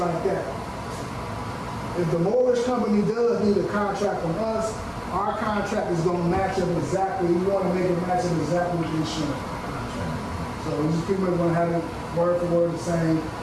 that. If the mortgage company does need a contract from us, our contract is going to match up exactly. We want to make it match up exactly with the insurance contract. So we just pretty much going to have it word for word the same.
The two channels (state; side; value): identical; both; correlation 1.00